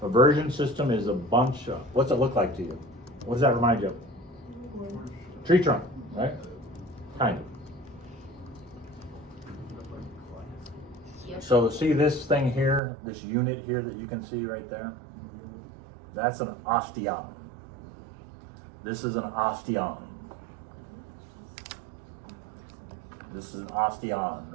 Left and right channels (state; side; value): drops out; left; at 12.8 s